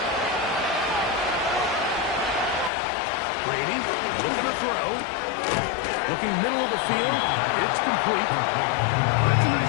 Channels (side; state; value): right; drops out; at 2.7 s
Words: Brady looking to throw. Looking middle of the field. It's complete. That's a